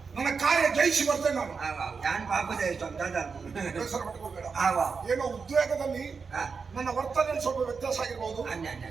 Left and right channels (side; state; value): left; quieter; 5.2 dB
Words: ನನ್ನ ಕಾರ್ಯ ಜಯಿಸಿ ಬರ್ತೇನೆ ನಾನು. ಆವ ನಾನು ಪಾಪದ ಬೇಸರ ಪಟ್ಕೋಬೇಡ. ಆವ ಏನೋ ಉದ್ವೇಗದಲ್ಲಿ ಹಾ ನನ್ನ ವರ್ತನೆಯಲ್ಲಿ ಸ್ವಲ್ಪ ವ್ಯತ್ಯಾಸ ಆಗಿರ್ಬೋದು. ಅನ್ನ ಅನ್ನ